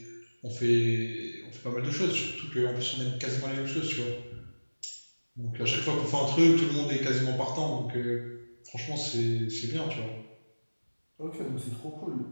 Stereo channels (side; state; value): both; inverted; correlation -1.00